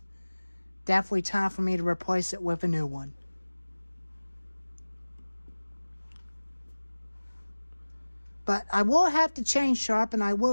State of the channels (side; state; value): both; inverted; correlation -1.00